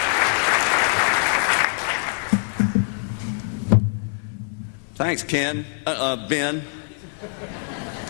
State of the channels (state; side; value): silent; right; 58 dB below the other